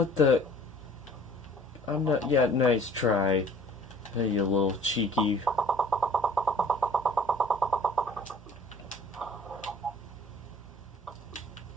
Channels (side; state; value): both; normal; correlation 0.51